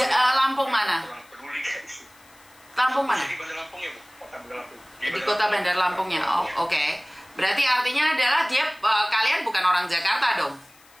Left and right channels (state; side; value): noise; left; hiss, 27 dB below the sound